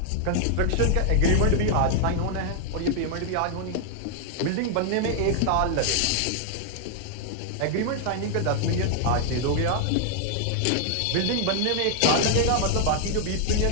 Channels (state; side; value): different; both; correlation 0.00